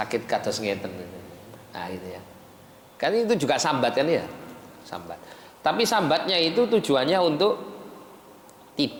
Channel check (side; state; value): both; identical; correlation 1.00